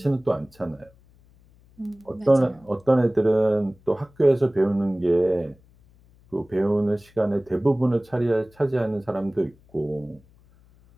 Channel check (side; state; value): left; noise; hum, 29 dB below the sound